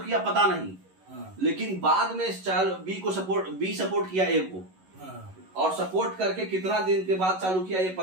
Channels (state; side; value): late; left; 11 ms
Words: किया पता नहीं, लेकिन बाद में बी सपोर्ट किया ए को, और सपोर्ट करके कितना दिन के बाद चालू किया ये